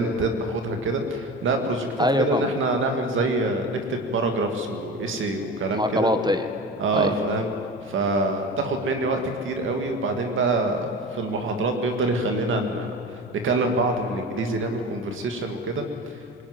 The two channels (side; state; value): both; normal; correlation 0.31